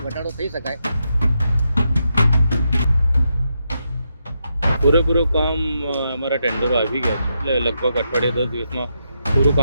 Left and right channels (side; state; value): both; inverted; correlation -0.83